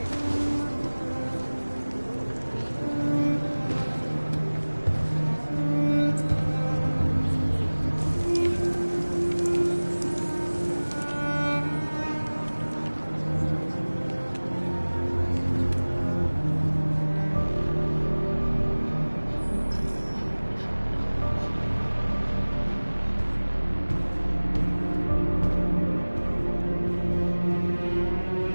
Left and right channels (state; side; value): inverted; both; correlation -1.00